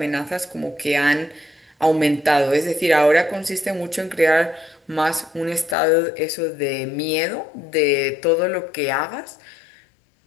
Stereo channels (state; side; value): drops out; right; at 5.8 s